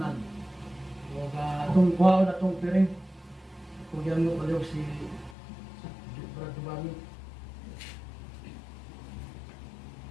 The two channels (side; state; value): right; drops out; at 5.4 s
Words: O atong kuhaon atong piring. Kung yan mo paliw si Brad Dubani.